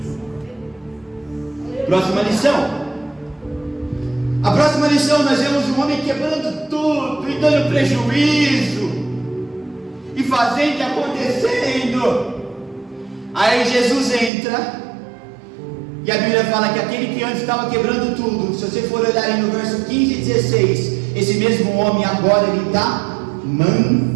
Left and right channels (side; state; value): left; drops out; at 14.3 s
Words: Próxima lição. A próxima lição, nós vemos um homem quebrando tudo e dando prejuízo. e fazendo e acontecendo. Aí Jesus entra, e a Bíblia fala que aquele que antes estava quebrando tudo, se você for olhar aí no verso 15 e 16, esse mesmo homem agora ele está